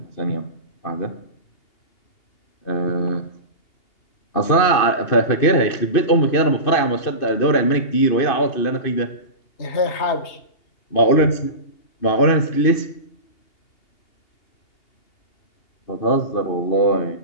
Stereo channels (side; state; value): right; late; 2.6 ms